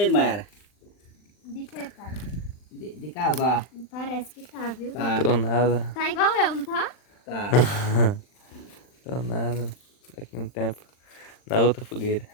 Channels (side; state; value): right; late; 39 ms